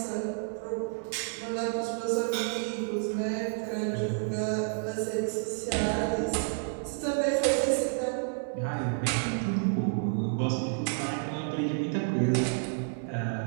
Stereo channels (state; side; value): silent; left; 58 dB below the other